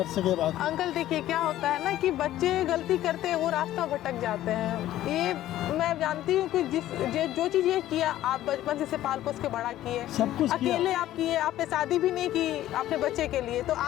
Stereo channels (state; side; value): quieter; right; 13.7 dB